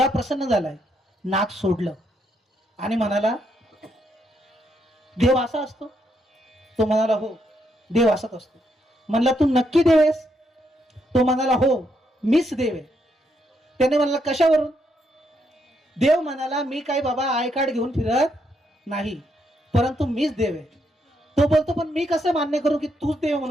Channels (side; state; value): both; normal; correlation 0.77